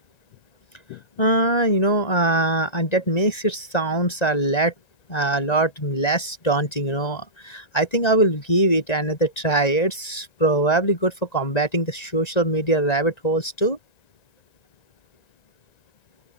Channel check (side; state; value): right; late; 1.9 ms